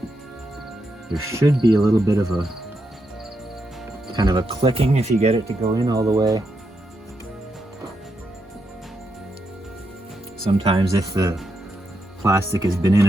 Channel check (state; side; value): normal; both; correlation 0.83